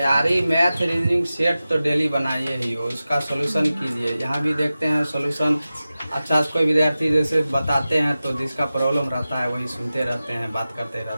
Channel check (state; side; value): inverted; both; correlation -0.95